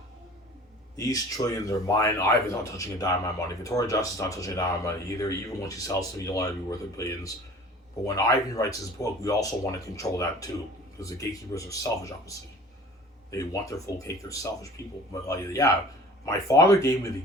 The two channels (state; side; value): normal; both; correlation 0.45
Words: These trillions are mine. Ivan's not touching a dime of my money. Victoria Justice is not touching a dime of my money either. Even when she sells to me, you'll let it be worth it billions. But when Ivan writes his book, we also want to control that too. Because the gatekeepers are selfish, obviously. They want their full cake. They're selfish people. But yeah, my father gave me the